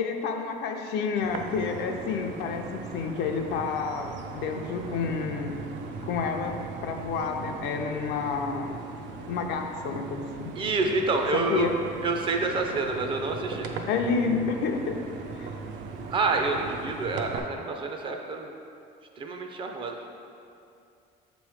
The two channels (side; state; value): both; normal; correlation 0.20